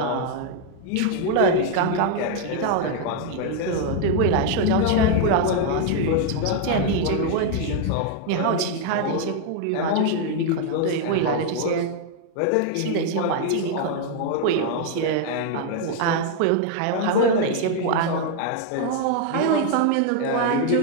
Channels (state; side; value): different; both; correlation 0.00